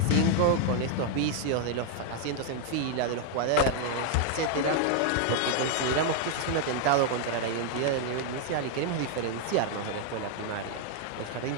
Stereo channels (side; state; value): both; different; correlation 0.00